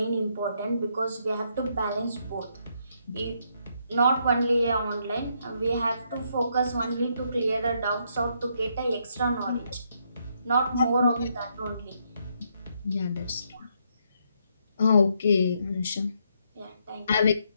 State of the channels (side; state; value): both; inverted; correlation -0.75